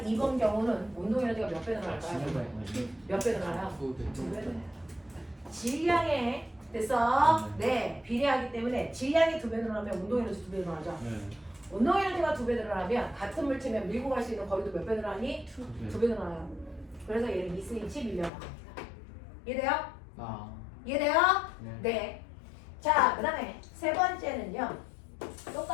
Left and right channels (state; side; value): drops out; right; at 18.3 s